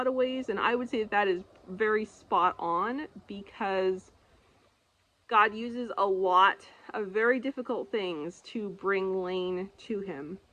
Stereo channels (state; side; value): identical; both; correlation 1.00